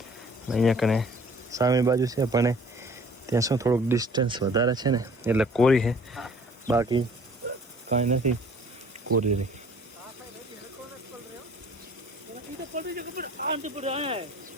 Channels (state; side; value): normal; both; correlation 0.53